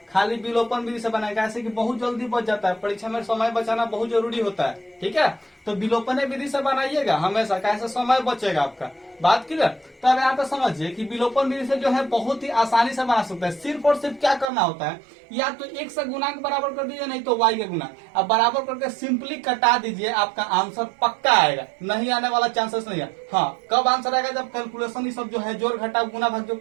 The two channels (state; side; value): drops out; left; at 14.5 s